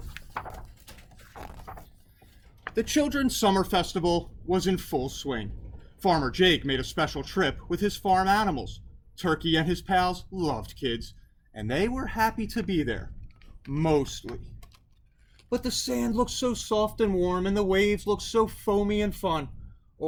The Children's Summer Festival was in full swing. Farmer Jake made a special trip with his farm animals. Turkey and his pals loved kids, and they were happy to be there. Mostly. But the sand looked so soft and warm, and the waves looked so foamy and fun.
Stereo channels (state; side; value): identical; both; correlation 1.00